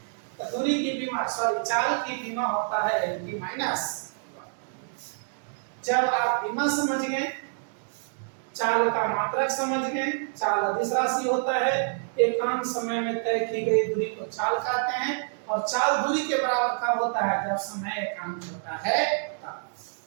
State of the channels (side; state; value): left; silent; 60 dB below the other